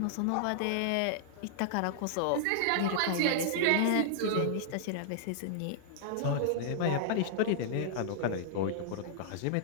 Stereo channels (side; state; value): both; different; correlation -0.01